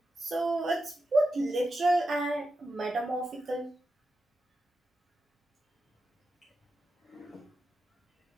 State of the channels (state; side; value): normal; both; correlation 0.89